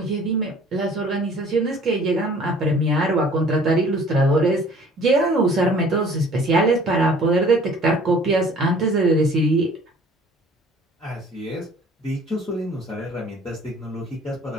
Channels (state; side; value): normal; both; correlation 0.52